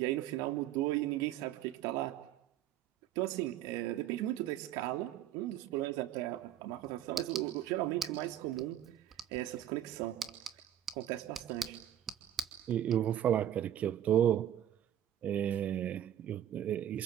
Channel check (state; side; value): quieter; left; 11.6 dB